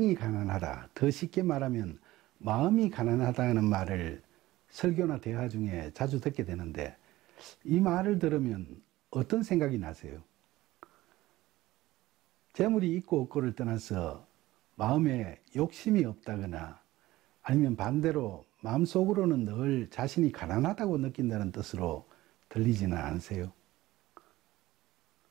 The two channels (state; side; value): quieter; left; 17.1 dB